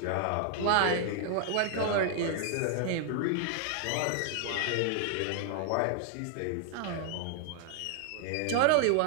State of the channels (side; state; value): both; different; correlation 0.00